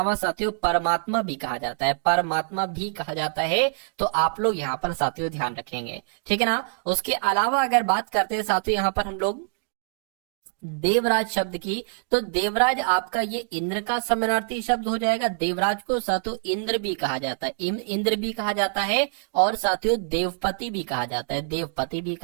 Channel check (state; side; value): silent; left; digital silence